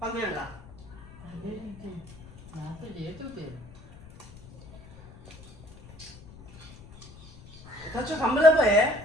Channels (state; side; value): noise; left; rumble, 19 dB below the sound